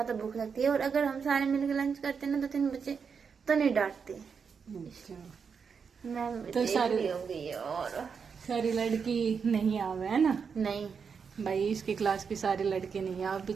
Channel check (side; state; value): left; quieter; 6.1 dB